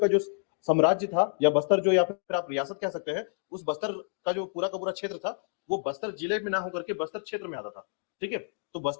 जो साम्राज्य था या बस्तर जो या फिर आप रियासत कह सकते हैं, उस बस्तर का जो पूरा का पूरा क्षेत्र था वो बस्तर जिले में ना होकर के बस्तर क्षेत्र में आता था, ठीक है। तो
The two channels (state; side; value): silent; right; digital silence